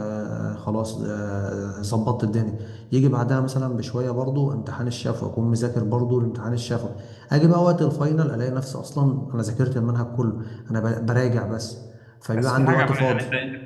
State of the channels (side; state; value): both; identical; correlation 1.00